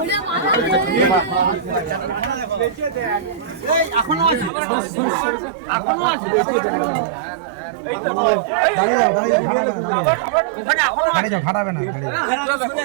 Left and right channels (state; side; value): drops out; left; at 4.5 s